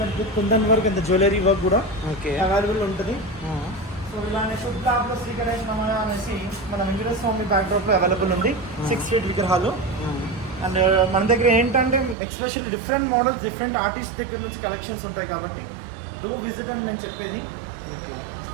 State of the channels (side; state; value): left; drops out; at 12.2 s